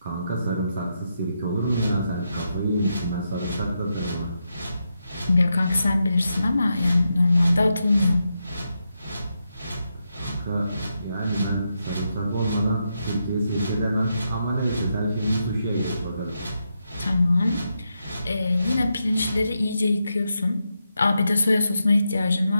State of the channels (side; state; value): both; inverted; correlation -0.84